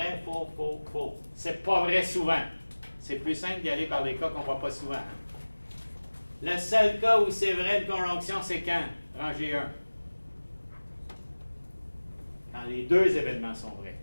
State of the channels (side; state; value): both; inverted; correlation -1.00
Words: faux, faux, faux. C'est pas vrai souvent. C'est plus simple d'y aller par des cas qu'on ne voit pas souvent. Le seul cas où c'est vrai une conjonction, c'est quand? Rangée 1. Quand les deux événements sont vrais.